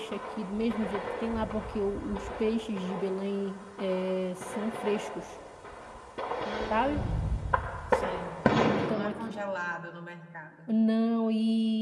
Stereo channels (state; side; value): identical; both; correlation 1.00